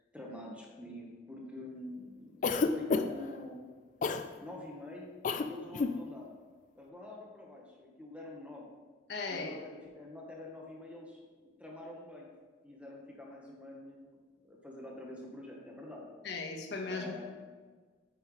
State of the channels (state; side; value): quieter; right; 3.5 dB